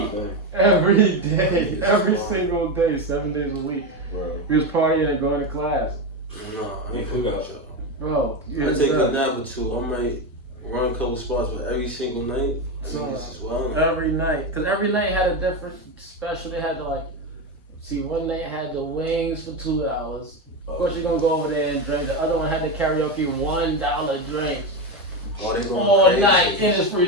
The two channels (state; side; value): normal; both; correlation 0.14